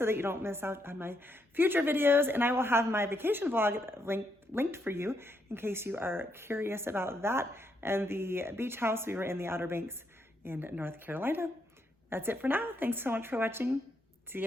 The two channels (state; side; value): normal; both; correlation 0.77